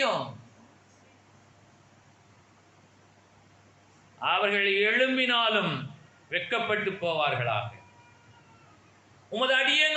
அவர்கள் எழும்பினாலும் வெட்கப்பட்டு போவார்களாக. உமது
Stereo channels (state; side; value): identical; both; correlation 1.00